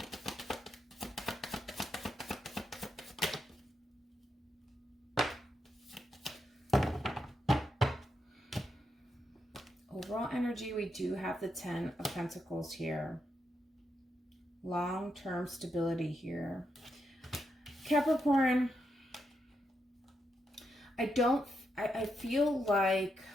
overall energy, we do have the 10 of Pentacles here. Long-term stability here. Capricorn, I feel like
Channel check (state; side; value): normal; both; correlation 0.83